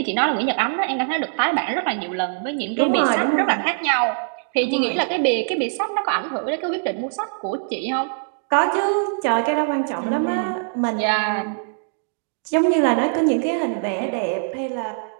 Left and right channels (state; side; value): silent; left; digital silence